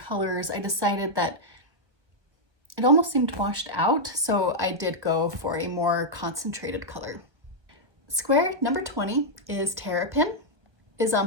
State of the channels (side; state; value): left; late; 1.3 ms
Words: I decided that it almost seemed washed out, so I did go for a more concentrated color. Square number 20 is Terrapin, is